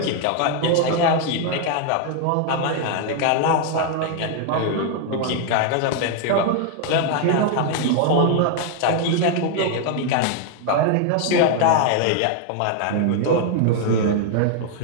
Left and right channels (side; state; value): both; different; correlation 0.00